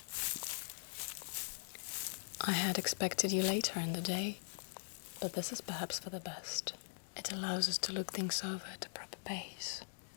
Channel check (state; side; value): silent; right; digital silence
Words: I had expected you later in the day, but this is perhaps for the best. It allows us to look things over at a proper pace.